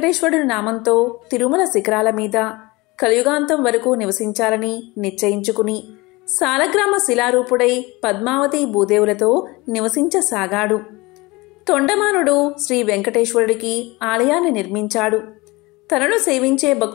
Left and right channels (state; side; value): quieter; right; 23.0 dB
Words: నామంతో తిరుమల శిఖరాల మీద కలియుగాంతం వరకు నివసించాలని నిశ్చయించుకుని సాలగ్రామ శిలారూపుడై పద్మావతి భూదేవులతో నివసించసాగాడు. తొండమానుడు శ్రీ వెంకటేశ్వరుడికి ఆలయాన్ని నిర్మించాడు. తనను సేవించే